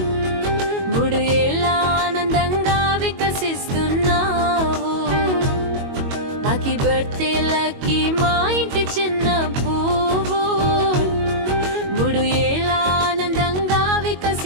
3 ఏళ్ళ ఆనందంగా వికసిస్తున్నావు. లక్కీ బర్త్డే లక్కీ మా ఇంటి చిన్న పువ్వు 3 ఏళ్ళ ఆనందంగా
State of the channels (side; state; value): left; late; 22 ms